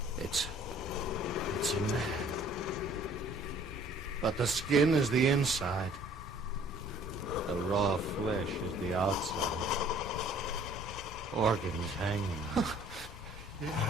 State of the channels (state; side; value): normal; both; correlation 0.55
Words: It's a man. But the skin is the inside. The raw flesh is the outside. Organs hanging.